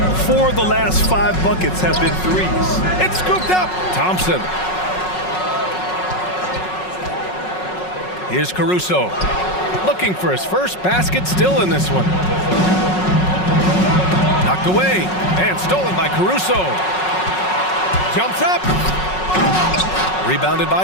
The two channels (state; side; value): late; right; 5.4 ms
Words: 4 of the last 5 buckets have been threes. It's scooped up. Thompson. Here's Caruso. Looking for his first basket, still in this one. Knocked away and stolen by Caruso. Jumps up. Rebounded